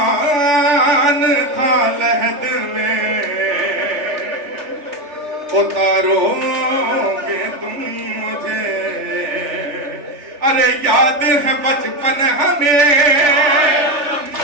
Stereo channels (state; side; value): late; left; 3.3 ms